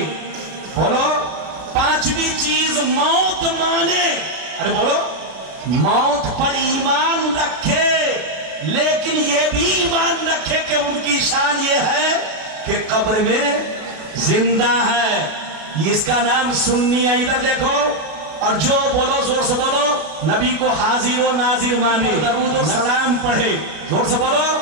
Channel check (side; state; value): left; late; 33 ms